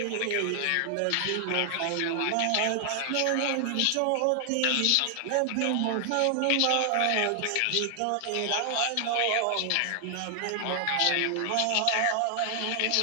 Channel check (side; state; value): both; different; correlation 0.00